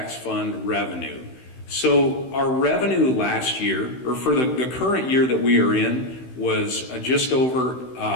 fund revenue. So our revenue last year, or for the current year that we are in, was just over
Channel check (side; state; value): right; late; 16 ms